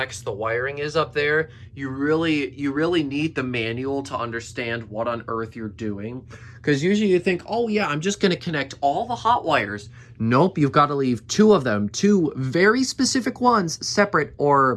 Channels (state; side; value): identical; both; correlation 1.00